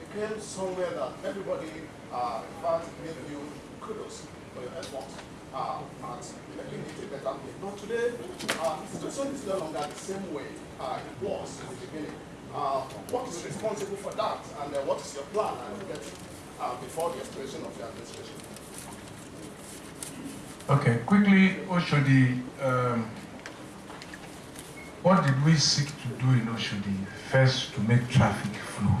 somewhere that everybody, in fact, gave you kudos for your efforts at making it a better place. But today, the situation is no longer the same way it was in the beginning. What is responsible for that, and what is your plan before the expiration of your administration? Okay, quickly, Oshodi, what did we seek to do in Oshodi? First, to make traffic flow.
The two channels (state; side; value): identical; both; correlation 1.00